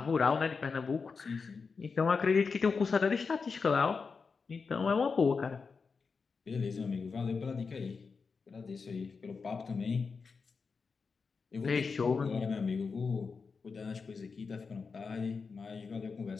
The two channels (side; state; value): right; quieter; 5.0 dB